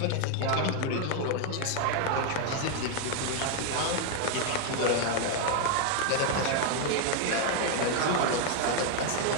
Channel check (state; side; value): different; both; correlation 0.00